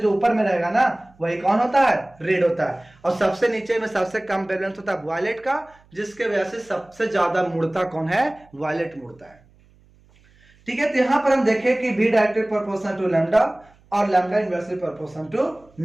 ऊपर में रहेगा ना वही कौन होता है, रेड होता है। और सबसे नीचे में सबसे कम वेवलेंथ होता है वायलेट का, जिसके वजह से सबसे ज्यादा मुड़ता कौन है, वायलेट मुड़ता है, ठीक है। तो यहां पर हम देखें कि v directly proportional to lambda और lambda inversely proportional to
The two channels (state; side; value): noise; right; hum, 30 dB below the sound